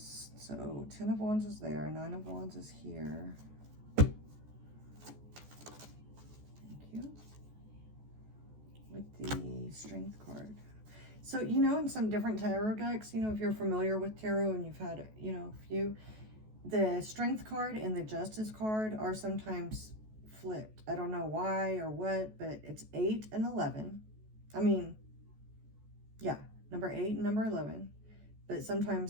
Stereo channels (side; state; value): left; late; 14 ms